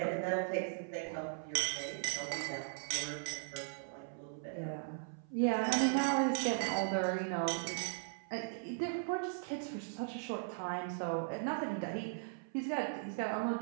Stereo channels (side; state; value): left; silent; 52 dB below the other